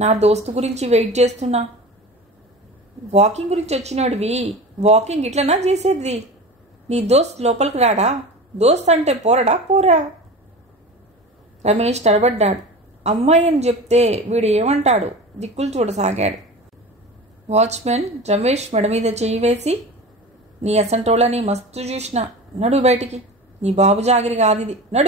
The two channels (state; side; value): normal; both; correlation 0.32